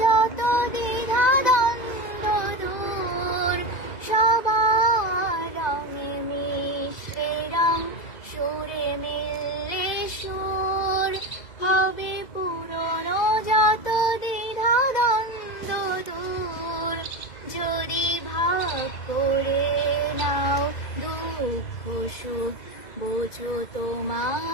যত দ্বিধা দ্বন্দ্ব দূর। সবার রঙে মিশলে রং, সুরে মিললে সুর, হবে পুরনো যত দ্বিধা দ্বন্দ্ব দূর। যদি ভাগ করে নাও দুঃখ সুখ, বোঝো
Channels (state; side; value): late; right; 2.0 ms